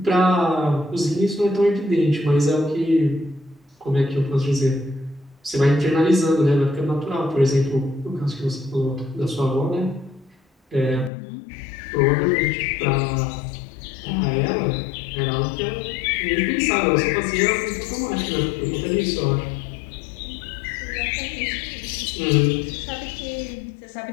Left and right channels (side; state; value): right; drops out; at 11.1 s